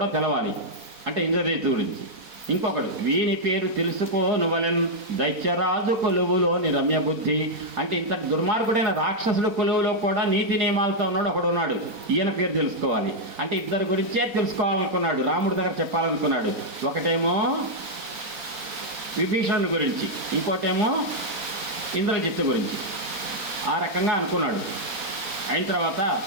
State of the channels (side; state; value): left; late; 4.3 ms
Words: తెలవాలి అంటే ఇంద్రదేశు గురించి. ఇంకొకడు వీని పేరు తెలుసుకోనువలెన్ దైత్యరాజు కొలువులోని రమ్య బుద్ధి. అంటే ఇంత దుర్మార్గుడైన రాక్షసుడు కొలువులో కూడా నీతి నియమాలతో ఉన్నాడు ఒకడున్నాడు, ఈయన పేరు తెలుసుకోవాలి. అంటే ఇద్దరు గురించే తెలుసుకోవాలనుకున్నాడు, రాముడి దగ్గర చెప్పాలనుకున్నాడు. ఒకటేమో విభీషణుడి గురించి, ఇంకోటేమో ఇంద్రజిత్తు గురించి. ఆ రకంగా అనుకున్నాడు. అయిన తర్వాత